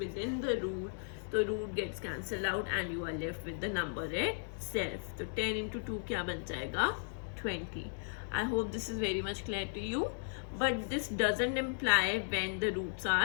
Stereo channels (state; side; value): silent; right; digital silence